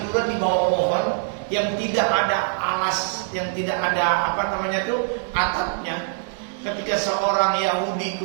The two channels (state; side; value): silent; left; digital silence